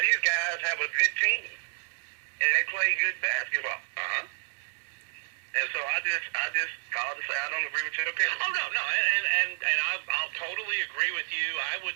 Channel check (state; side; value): silent; left; 58 dB below the other